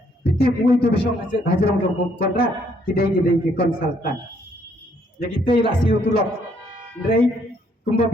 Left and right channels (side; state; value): both; normal; correlation 0.68